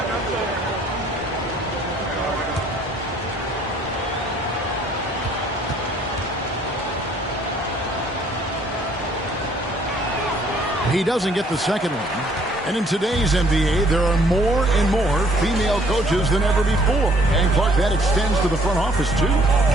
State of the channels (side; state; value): both; normal; correlation 0.61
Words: He doesn't get the second one. And in today's NBA, there are more and more female coaches than ever before. And, Clark, that extends to the front office, too.